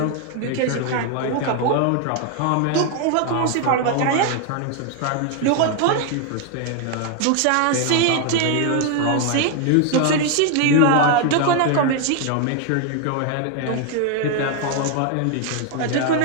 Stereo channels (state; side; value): different; both; correlation 0.01